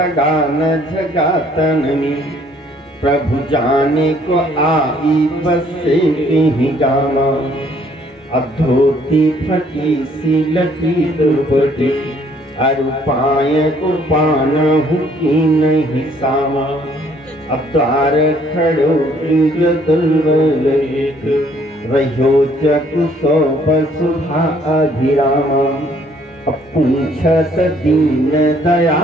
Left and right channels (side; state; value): both; normal; correlation 0.62